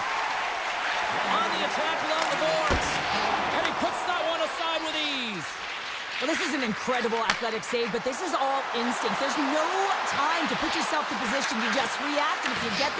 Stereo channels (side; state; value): both; identical; correlation 1.00